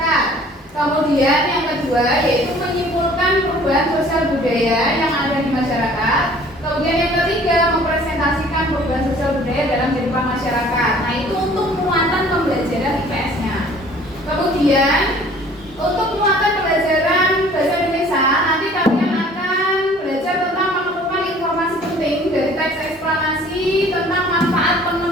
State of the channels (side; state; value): both; normal; correlation 0.52